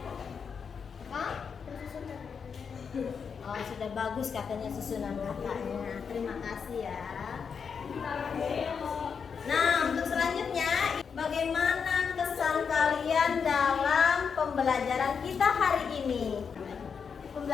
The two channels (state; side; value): quieter; right; 6.3 dB